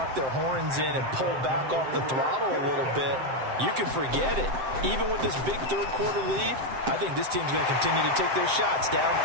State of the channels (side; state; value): left; late; 7.7 ms